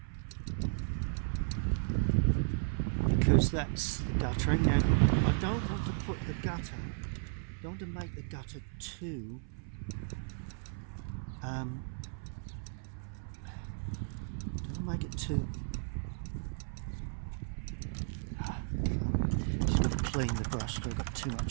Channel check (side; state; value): left; silent; 55 dB below the other